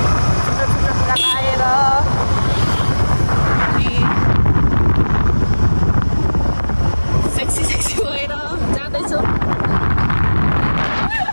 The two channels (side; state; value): both; inverted; correlation -1.00